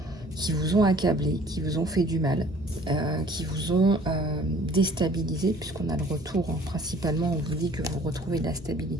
qui vous ont accablé, qui vous ont fait du mal, qui vous ont déstabilisé, puisqu'on a le retour. Hein. Principalement, on vous dit que vous retrouvez de la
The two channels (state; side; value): noise; right; rumble, 21 dB below the sound